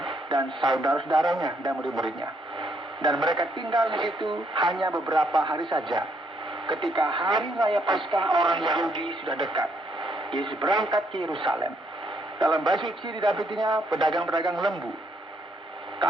dan saudara-saudaranya dan murid-muridnya. Dan mereka tinggal di situ hanya beberapa hari saja. Ketika hari raya Paskah orang Yahudi sudah dekat, Yesus berangkat ke Yerusalem. Dalam bait suci didapatinya pedagang-pedagang lembu,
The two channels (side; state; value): both; normal; correlation 0.72